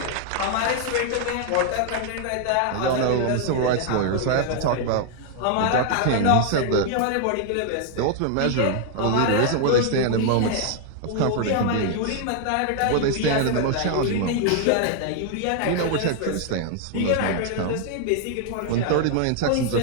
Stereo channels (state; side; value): different; both; correlation 0.00